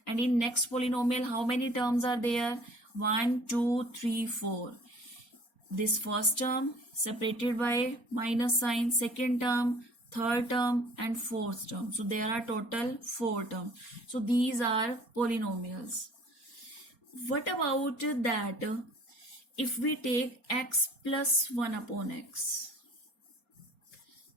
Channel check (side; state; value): right; late; 4.3 ms